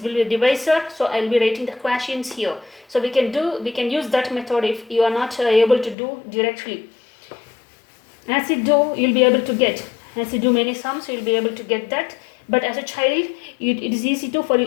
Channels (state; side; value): drops out; right; at 6.0 s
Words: will be the divisor, so I will be writing the quotients here. So we can use that method if you are not able to do directly. As you do, you will be able to get, as you do many sums, you will be able to get that. But as a child, it is